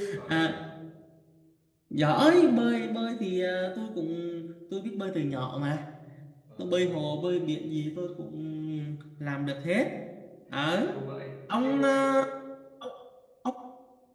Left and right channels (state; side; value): identical; both; correlation 1.00